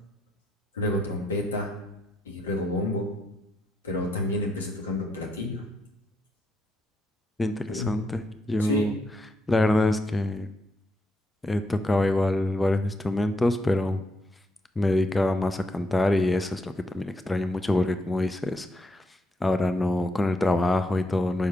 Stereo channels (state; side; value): normal; both; correlation 0.79